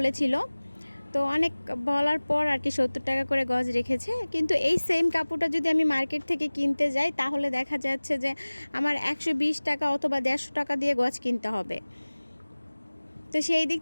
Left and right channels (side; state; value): both; inverted; correlation -1.00